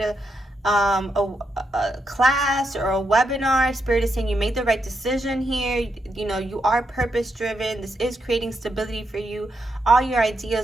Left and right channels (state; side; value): normal; both; correlation 0.82